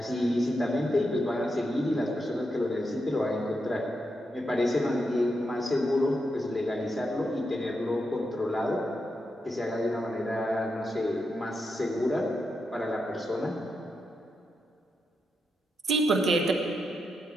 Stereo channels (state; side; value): normal; both; correlation 0.85